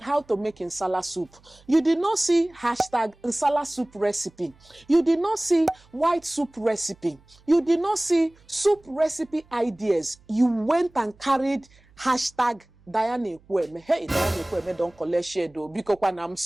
make nsala soup. You did not see hashtag nsala soup recipe. You did not see white soup recipe. You did not see soup recipe ideas. You went and carried hashtag Diane Kweme. Hey, Diane Kweme don't collect share though, because I'm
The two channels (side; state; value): right; noise; hum, 29 dB below the sound